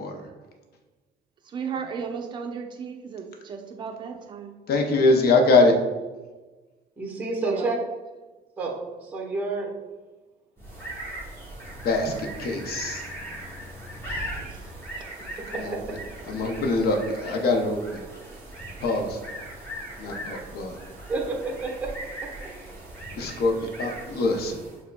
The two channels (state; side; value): normal; both; correlation 0.43